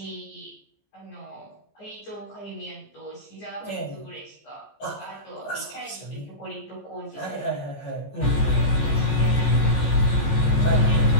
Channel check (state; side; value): late; right; 14 ms